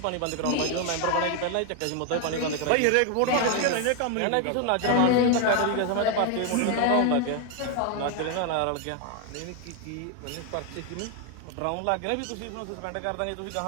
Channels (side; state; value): both; different; correlation 0.01